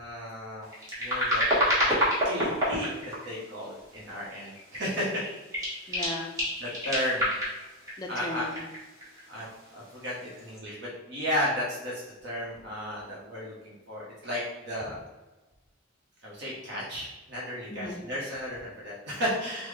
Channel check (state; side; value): normal; both; correlation 0.00